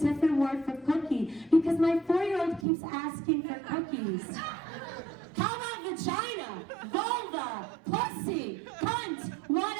word for cookie because my 4-year-old keeps asking for cookies. How about vagina, vulva, pussy, cunt,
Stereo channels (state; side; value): drops out; left; at 2.7 s